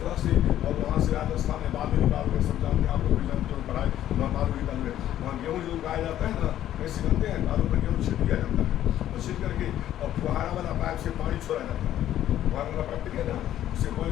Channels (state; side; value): quieter; right; 12.1 dB